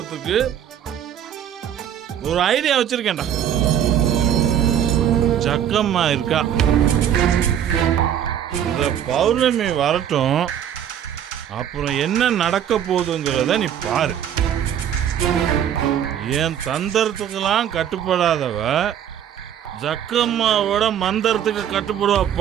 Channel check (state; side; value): quieter; left; 9.8 dB